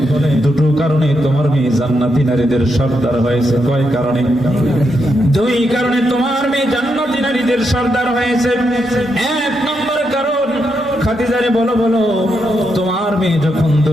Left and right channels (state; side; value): normal; both; correlation 0.82